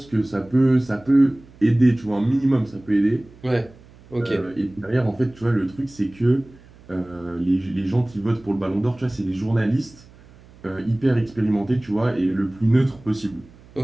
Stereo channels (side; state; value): right; noise; hum, 24 dB below the sound